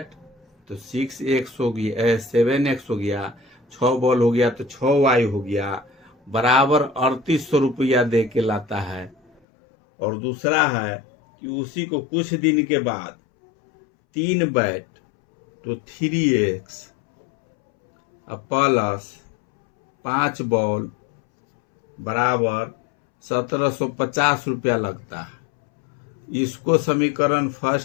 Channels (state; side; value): drops out; right; at 9.4 s